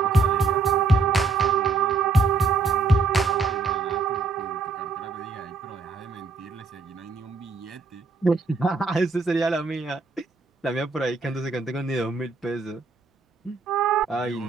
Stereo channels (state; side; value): quieter; left; 4.0 dB